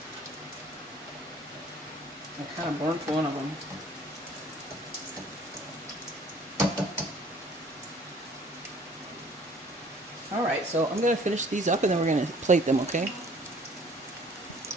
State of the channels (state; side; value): normal; both; correlation 0.55